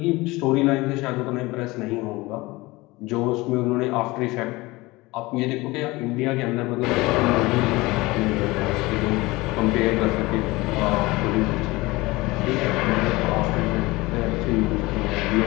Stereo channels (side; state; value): right; quieter; 21.5 dB